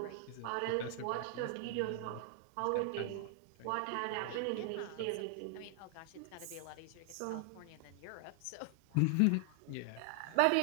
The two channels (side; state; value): both; different; correlation 0.00